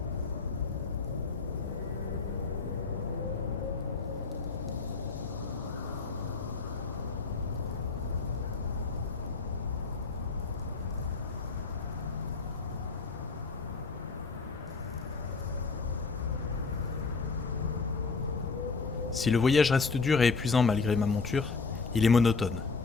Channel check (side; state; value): right; quieter; 4.4 dB